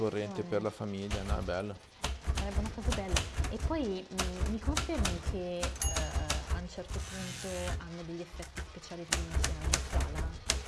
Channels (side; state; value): both; identical; correlation 1.00